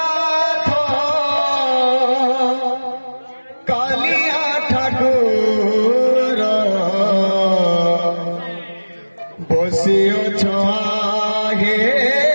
कालिया ठाकुर बसिअछ हे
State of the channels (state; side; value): inverted; both; correlation -1.00